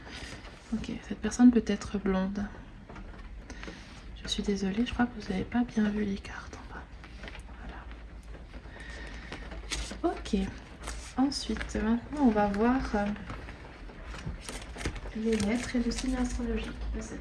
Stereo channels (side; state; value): both; identical; correlation 1.00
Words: Ok, cette personne peut être blonde. Je suis désolée, je crois que vous n'avez pas bien vu les cartes en bas. Voilà. Ok. Ensuite, maintenant, on va voir les lettres et le signe astrologique de